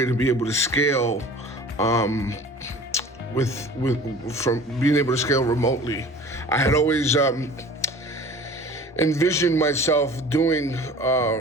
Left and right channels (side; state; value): both; normal; correlation 0.43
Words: to be able to scale from being able to scale remotely. I had always envisioned myself doing